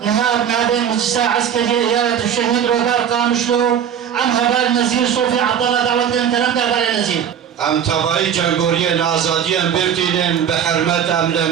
إيهاب نادي مجلسة عسكرية إيادة الشهيد روبار قامشلو عم هبال نزير صوفي عبد الله دعوت لهم كلام دابال نزير ام تبعی جنگوریان آزادیان برتینن به حرمت ام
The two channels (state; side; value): quieter; left; 8.7 dB